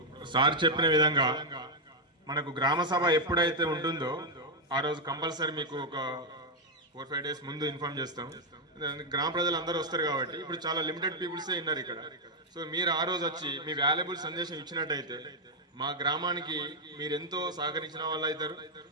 సార్ చెప్పిన విధంగా మనకు గ్రామ సభ ఎప్పుడైతే ఉంటుందో ఆ రోజు కంపల్సరీ మీకు ఒక 4-5 days ముందు ఇన్ఫార్మ్ చేస్తాం. గ్రామ ప్రజలు అందరూ వస్తారు కాబట్టి ఇప్పుడు చాలా లిమిటెడ్ పీపుల్సే ఉన్నారు ఇక్కడ. సో మీరు ఆ రోజు వచ్చి మీ వాల్యుబుల్ సందేశం ఇచ్చినట్టయితే మా గ్రామానికి మీరు ఎంతో సహకరించిన వాళ్ళు అవుతారు.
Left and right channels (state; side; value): normal; both; correlation 0.00